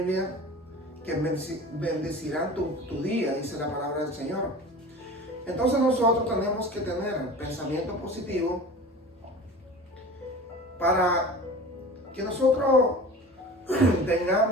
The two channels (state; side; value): normal; both; correlation 0.37